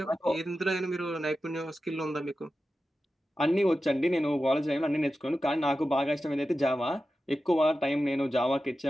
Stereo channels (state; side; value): normal; both; correlation 0.93